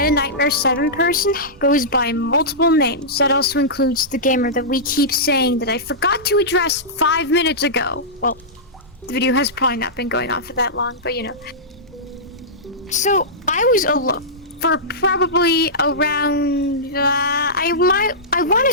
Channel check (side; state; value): both; normal; correlation -0.15